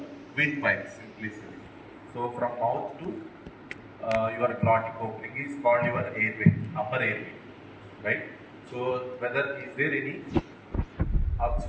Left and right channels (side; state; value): both; identical; correlation 1.00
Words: windpipe, simply said. So from mouth to your glottic opening is called your airway, upper airway, right? So whether is there any